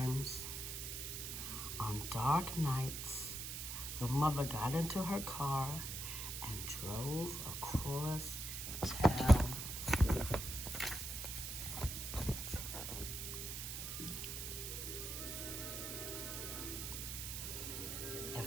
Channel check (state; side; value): noise; right; hiss, 5 dB below the sound